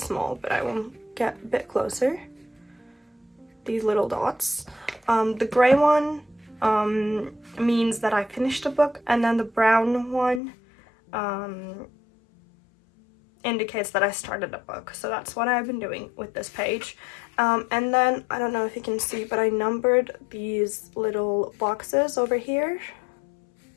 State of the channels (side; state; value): right; drops out; at 10.4 s